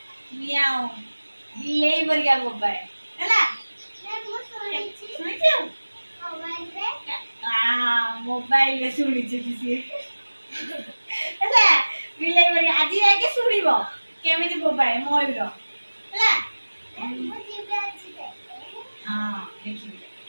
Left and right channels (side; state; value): both; inverted; correlation -1.00